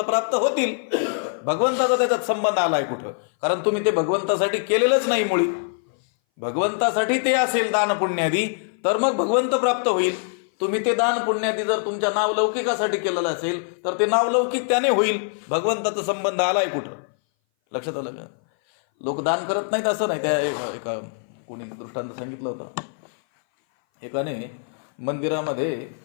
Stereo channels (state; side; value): silent; right; 59 dB below the other